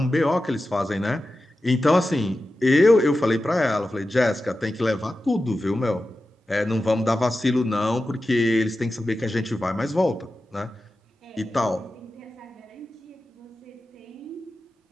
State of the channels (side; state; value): both; normal; correlation 0.93